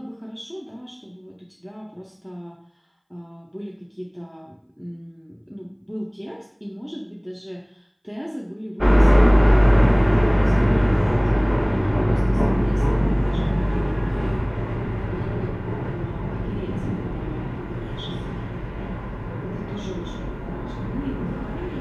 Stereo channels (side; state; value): both; identical; correlation 1.00